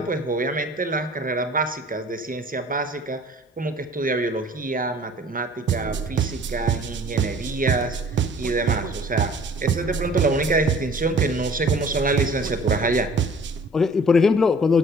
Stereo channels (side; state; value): both; normal; correlation 0.50